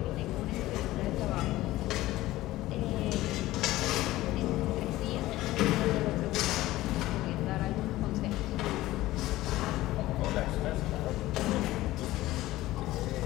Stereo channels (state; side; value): quieter; right; 16.8 dB